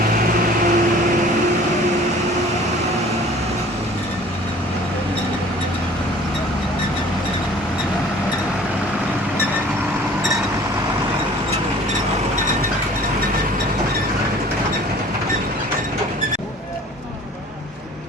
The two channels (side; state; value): both; normal; correlation 0.49